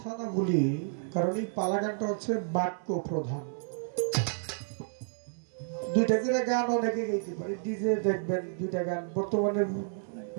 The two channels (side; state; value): left; silent; digital silence